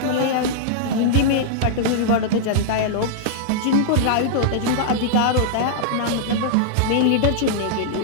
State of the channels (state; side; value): different; both; correlation -0.02